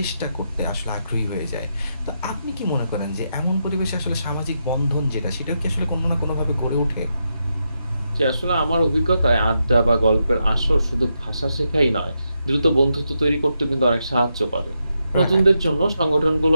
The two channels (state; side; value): inverted; both; correlation -0.84